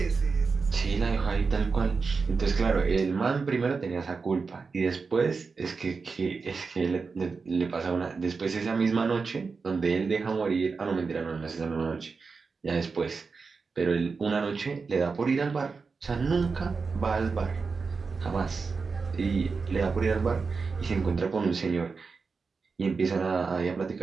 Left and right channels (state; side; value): quieter; left; 4.8 dB